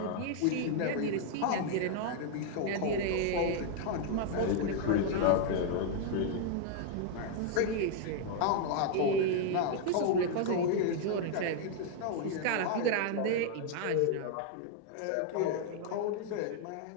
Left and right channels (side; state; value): both; different; correlation 0.00